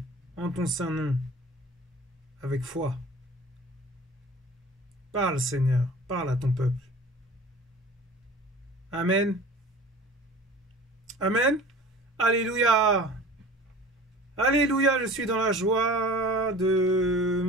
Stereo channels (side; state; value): both; normal; correlation 0.42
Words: en ton saint nom, avec foi. Parle, Seigneur. Parle à ton peuple. Amen. Amen. Alléluia. Alléluia, je suis dans la joie de